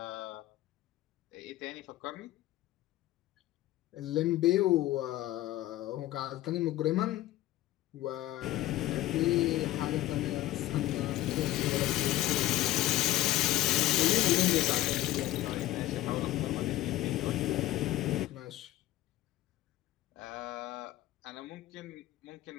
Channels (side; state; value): right; quieter; 15.4 dB